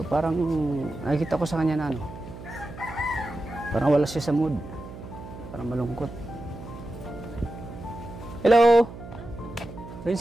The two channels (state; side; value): noise; right; hum, 13 dB below the sound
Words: parang nakikita ko sa kanya na ano, parang wala siya sa mood. Parang malungkot. Hello!